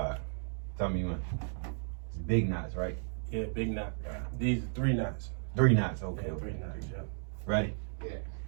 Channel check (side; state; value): left; silent; 55 dB below the other